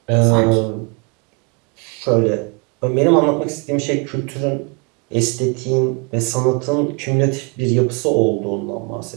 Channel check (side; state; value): left; quieter; 32.3 dB